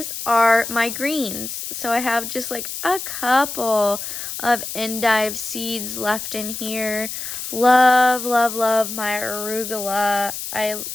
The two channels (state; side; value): noise; left; hiss, 7 dB below the sound